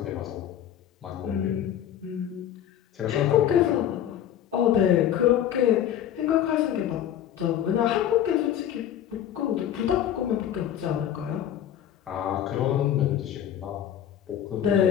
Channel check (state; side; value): quieter; right; 10.5 dB